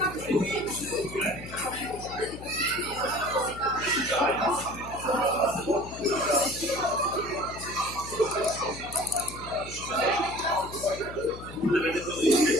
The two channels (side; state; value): left; noise; hum, 13 dB below the sound